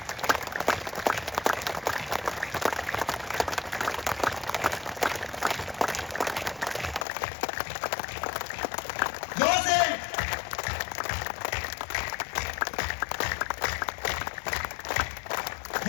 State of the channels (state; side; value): drops out; right; at 7.1 s